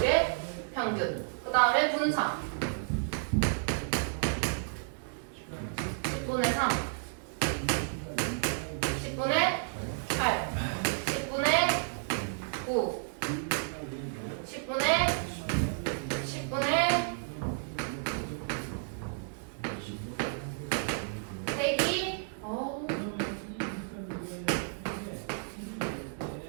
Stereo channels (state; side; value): silent; left; digital silence